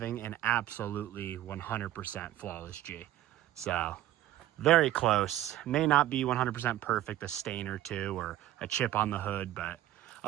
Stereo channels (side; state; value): left; quieter; 14.0 dB